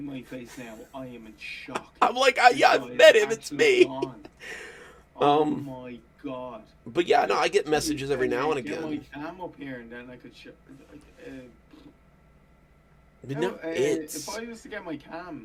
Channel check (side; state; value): both; identical; correlation 1.00